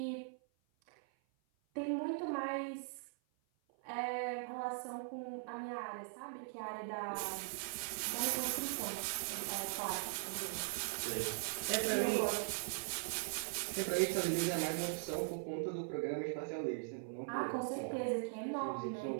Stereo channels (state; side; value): silent; left; 51 dB below the other